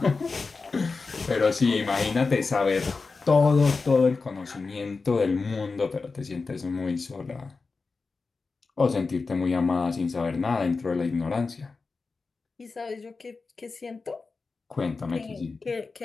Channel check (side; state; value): right; quieter; 4.2 dB